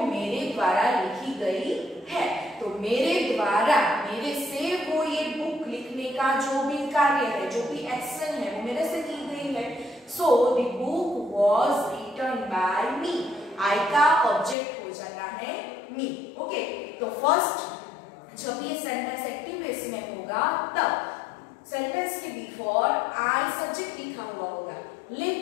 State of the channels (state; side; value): drops out; right; at 14.6 s